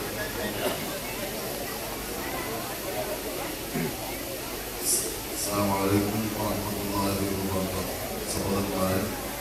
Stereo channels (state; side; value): identical; both; correlation 1.00